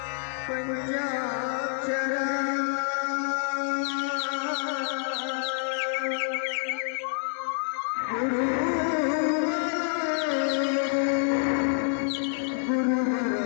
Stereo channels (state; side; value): silent; right; digital silence